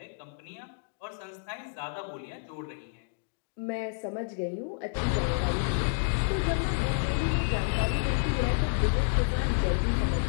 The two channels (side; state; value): right; silent; digital silence